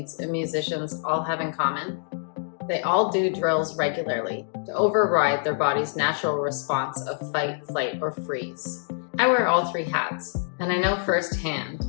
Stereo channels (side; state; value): right; silent; digital silence